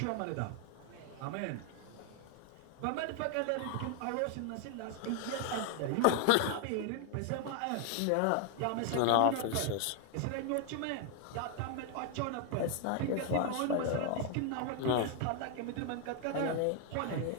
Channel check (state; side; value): different; both; correlation 0.00